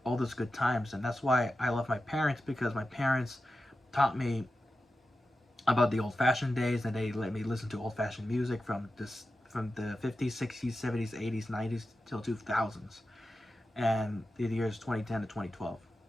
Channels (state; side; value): normal; both; correlation 0.92